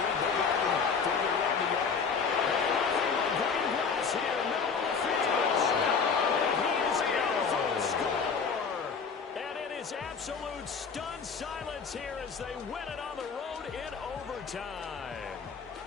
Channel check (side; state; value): right; quieter; 5.7 dB